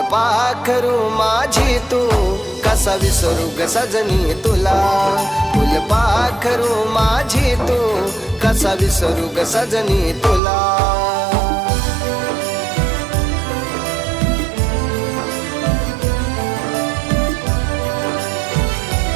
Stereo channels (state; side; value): drops out; left; at 10.4 s